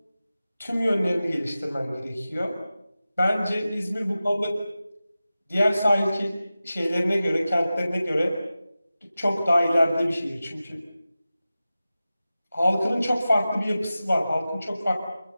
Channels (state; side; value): inverted; both; correlation -0.95